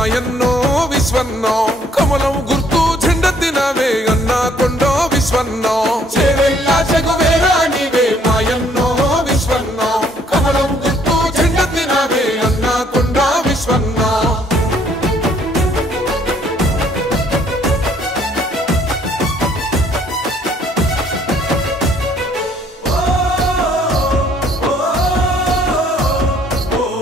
విశ్వన్నో కమలం గుర్తు జెండెత్తినవే అన్నా కొండో విశ్వన్నో చేవెల్ల చెగువేరా నీవే మాయన్నో విశ్వన్నో కమలం గుర్తు జెండెత్తినవే అన్నా కొండో విశ్వన్నో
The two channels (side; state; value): both; normal; correlation 0.63